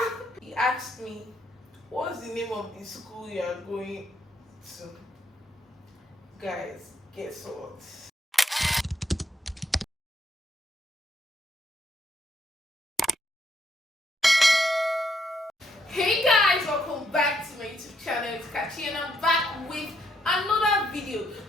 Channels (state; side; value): normal; both; correlation 0.74